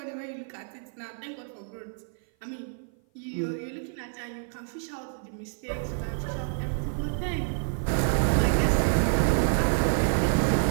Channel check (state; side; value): silent; left; 55 dB below the other